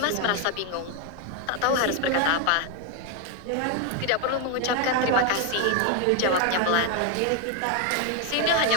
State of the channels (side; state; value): both; different; correlation 0.01